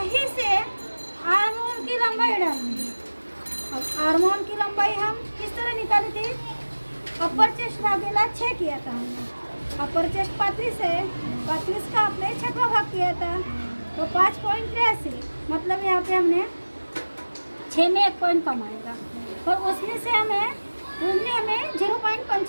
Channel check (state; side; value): inverted; both; correlation -1.00